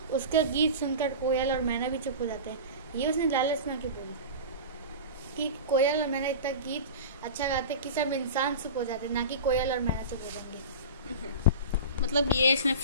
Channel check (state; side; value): inverted; both; correlation -0.31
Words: उसका गीत सुनकर कोयल और मैना भी चुप हो जाते हैं। ये उसने लालच में क्यों बोली कि कोयल और मैना इतना गीत अच्छा गाते कि सब इंसान चुप हो जाते, ना कि कोयल और मैना चुप हो जाएंगे। मतलब ये इसने